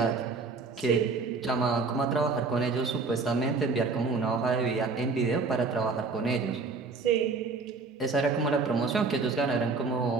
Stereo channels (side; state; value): left; quieter; 4.2 dB